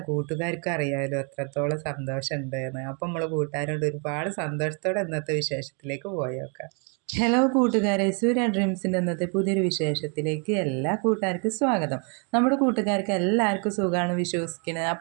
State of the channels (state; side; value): quieter; left; 37.5 dB